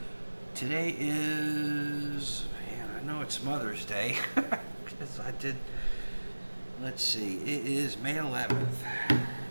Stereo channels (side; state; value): both; inverted; correlation -1.00